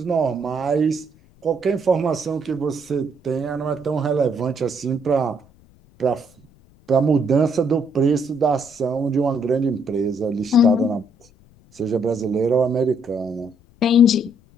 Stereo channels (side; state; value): left; noise; rumble, 29 dB below the sound